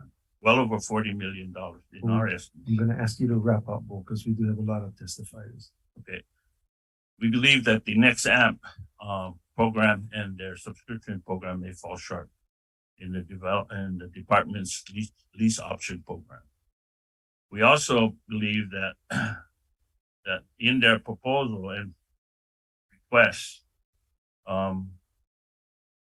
well over $40 million in our estimate. I'm gonna ask you to wrap up, Bo, because we do have a lot of testifiers. Okay. We believe that the next AMP program and their subscription program may fall short in the department's lease option program. We also believe that that in their proposal and request,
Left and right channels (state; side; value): identical; both; correlation 1.00